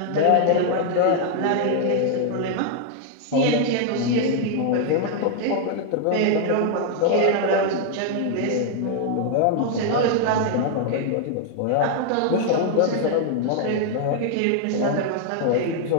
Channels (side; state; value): both; different; correlation 0.00